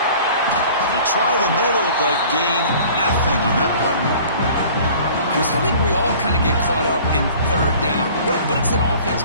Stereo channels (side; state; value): both; inverted; correlation -0.48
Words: Try the middle, but gain nothing on that play. Chris, I think we all kind of get caught up in 3rd down. What's an offense